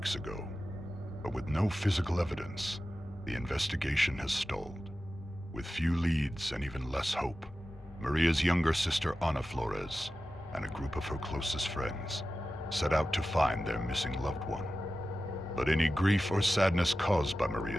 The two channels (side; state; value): both; normal; correlation 0.94